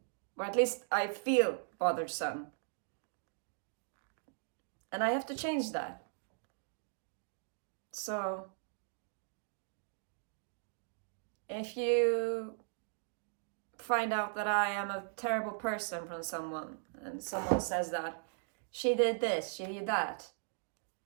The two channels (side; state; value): left; silent; digital silence